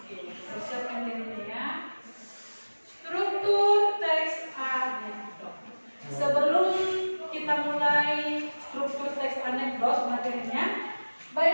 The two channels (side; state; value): both; inverted; correlation -1.00